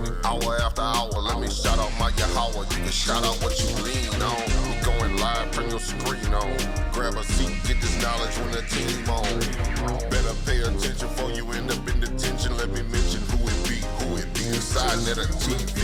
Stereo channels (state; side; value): identical; both; correlation 1.00